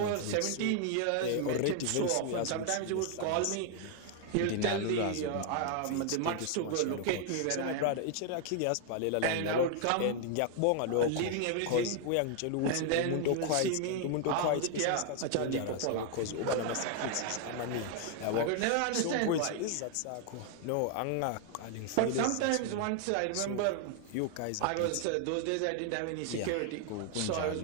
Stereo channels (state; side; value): different; both; correlation 0.00